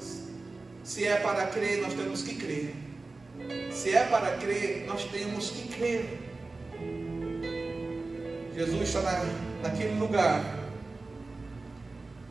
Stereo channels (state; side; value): quieter; left; 3.5 dB